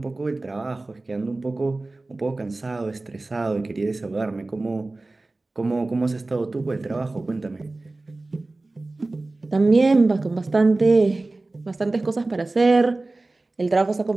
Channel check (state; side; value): quieter; left; 3.1 dB